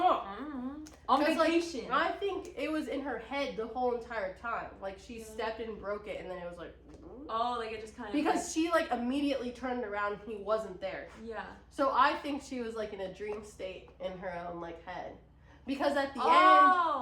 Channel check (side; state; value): both; identical; correlation 1.00